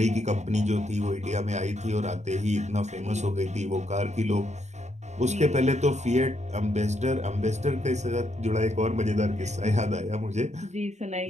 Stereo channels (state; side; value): late; left; 0.33 ms